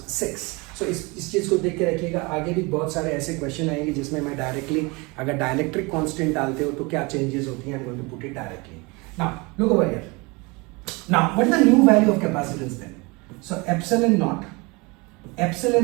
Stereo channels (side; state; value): left; quieter; 26.8 dB